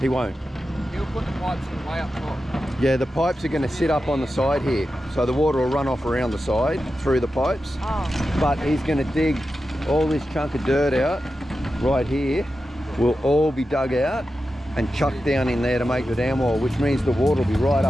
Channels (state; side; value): normal; both; correlation 0.91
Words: won't. He'll put the pipes in way up top. Yeah, the pipes are going to sit up on the side here. So the water will run off around the side through the pipes. Oh. But he's going to dig all this chunk of dirt out right here. Will all be dug out and chucked down in there to make the dam wall, which means the water will be right